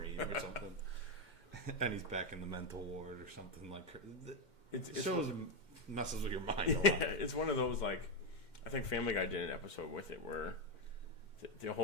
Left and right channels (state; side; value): late; right; 2.1 ms